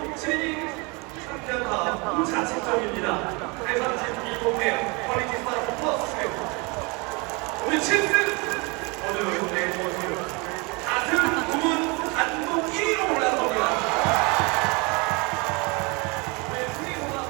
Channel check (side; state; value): left; quieter; 28.8 dB